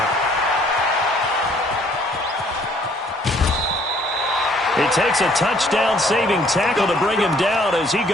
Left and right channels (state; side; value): normal; both; correlation 0.61